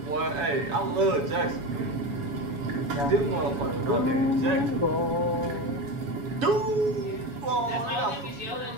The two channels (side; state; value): left; late; 7.2 ms